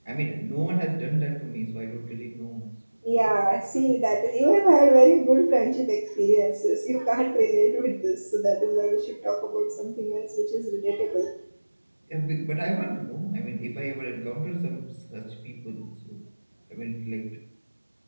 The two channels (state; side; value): inverted; both; correlation -1.00